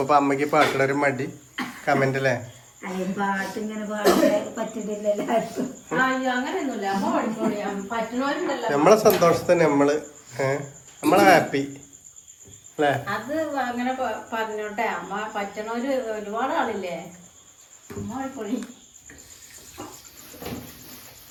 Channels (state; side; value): identical; both; correlation 1.00